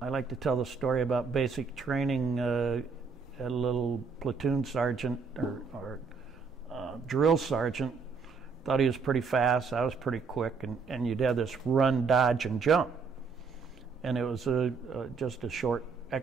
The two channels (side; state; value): left; quieter; 5.1 dB